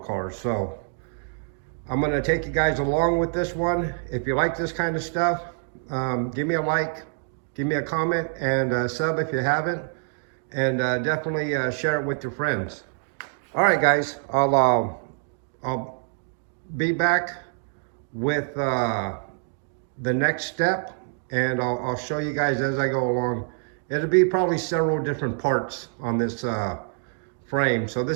So I'm gonna take you guys along with this one. If you like this kind of stuff, give me a like, give me a comment, and sub if you haven't, and definitely share it with your friends. All right, guys, I'll be back with the next step, and I'll show you guys as I go along. It'll be probably several different parts on this frame. So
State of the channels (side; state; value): left; silent; 56 dB below the other